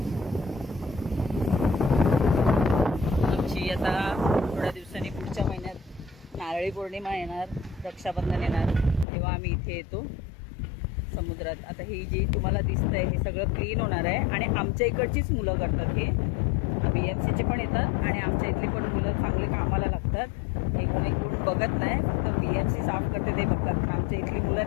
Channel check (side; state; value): right; drops out; at 9.1 s